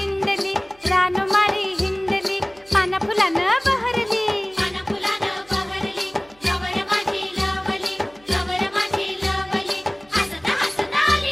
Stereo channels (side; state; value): right; noise; hum, 29 dB below the sound